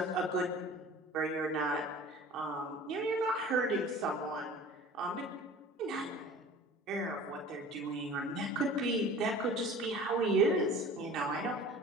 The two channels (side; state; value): both; normal; correlation 0.42